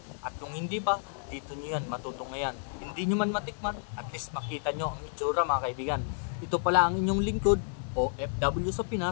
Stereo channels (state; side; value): silent; right; digital silence